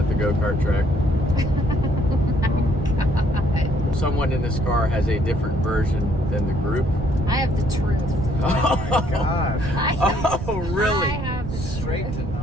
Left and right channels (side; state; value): right; noise; rumble, 7 dB below the sound